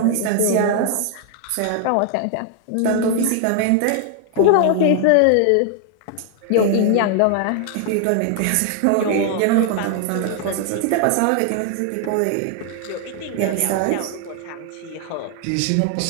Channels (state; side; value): different; both; correlation 0.00